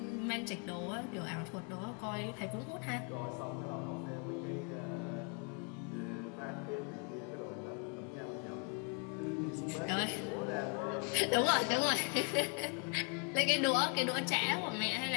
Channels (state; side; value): quieter; right; 36.9 dB